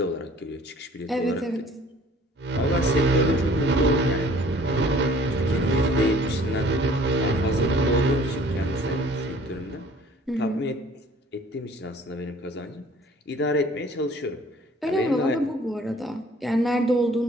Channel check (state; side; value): normal; both; correlation 0.53